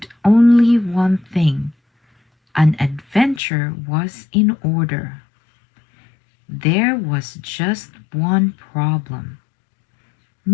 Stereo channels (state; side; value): drops out; right; at 3.4 s